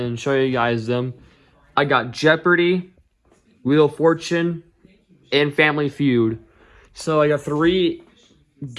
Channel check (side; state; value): both; identical; correlation 1.00